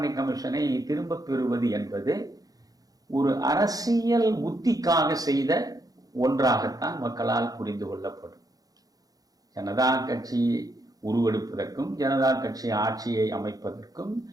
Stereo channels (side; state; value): left; late; 0.18 ms